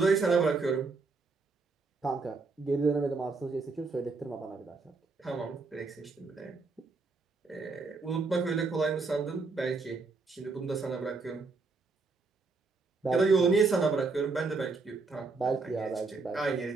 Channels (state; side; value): quieter; left; 4.1 dB